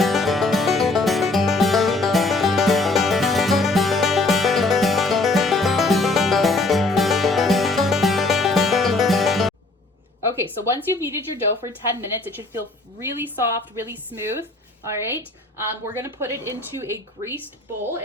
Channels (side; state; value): right; quieter; 3.1 dB